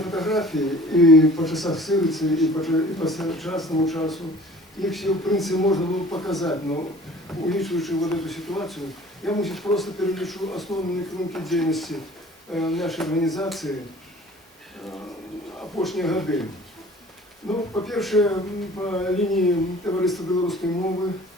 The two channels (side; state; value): both; normal; correlation 0.48